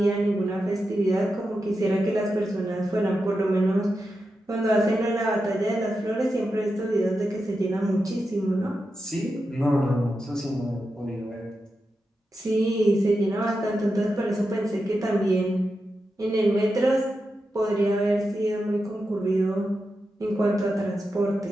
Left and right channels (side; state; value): both; normal; correlation 0.89